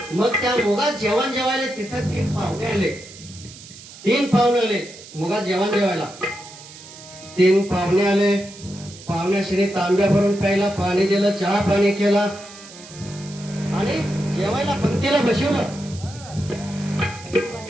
मग त्या मुगात जेवण जेवायला तिथं 3 पाहुणे आले. 3 पाहुणे आले मुगात जेवण जेवायला. 3 पाहुणे आले. पाहुण्याशी तांब्या भरून प्यायला पाणी दिलं, चहा पाणी केला आणि जेवायला पंक्तीला बसवलं.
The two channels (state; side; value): noise; right; hiss, 17 dB below the sound